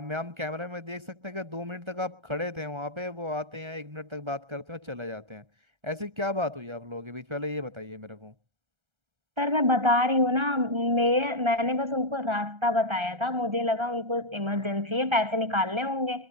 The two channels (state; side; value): late; left; 1.3 ms